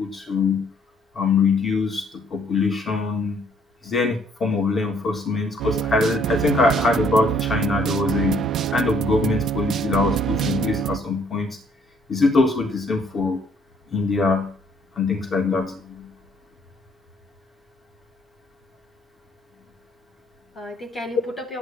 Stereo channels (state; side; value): normal; both; correlation 0.64